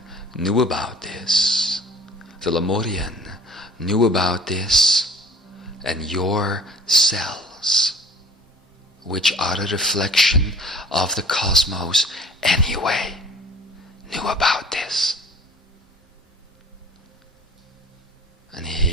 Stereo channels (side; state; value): both; normal; correlation 0.48